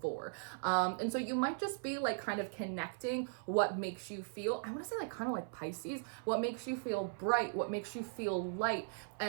And so you might just be like kind of connecting what makes you feel, I want to say like kind of like Pisces, what makes you feel bright, what makes you feel light.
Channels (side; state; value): left; silent; 52 dB below the other